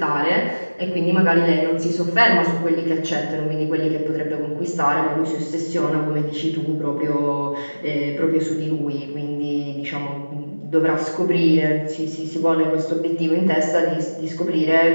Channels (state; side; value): inverted; both; correlation -1.00